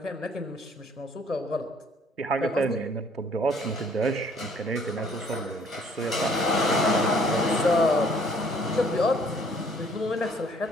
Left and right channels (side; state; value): both; normal; correlation 0.60